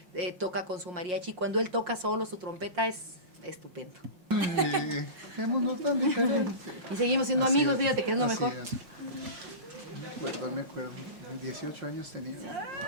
toca con su mariachi, cuando él toca solo su trompeta, es estupendo. Ay, qué mundo tan diferente. Y seguimos siendo Así amigos, es, fíjate que es lo así mejor. es. Me acuerdo. 18 años tenía.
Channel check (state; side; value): late; left; 5.6 ms